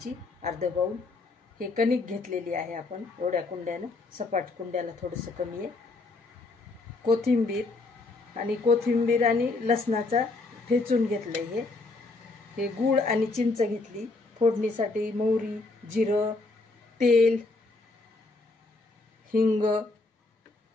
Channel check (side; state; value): right; quieter; 3.4 dB